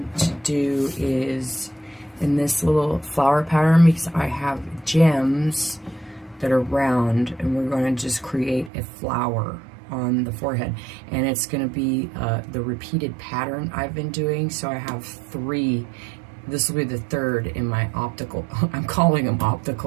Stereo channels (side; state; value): left; drops out; at 8.7 s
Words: to do is in this little flower pattern, because I have gems that are round, and we're going to just create a flower on the forehead, and it's going to be the repeated pattern I've been doing. So I have 3. This will be the 3rd in my optical, I'm calling them